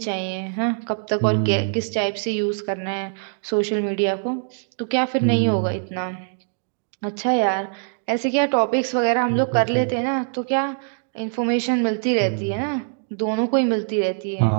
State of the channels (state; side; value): silent; left; digital silence